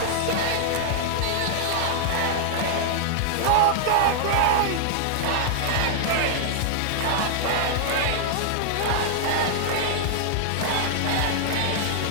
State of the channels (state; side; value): different; both; correlation -0.01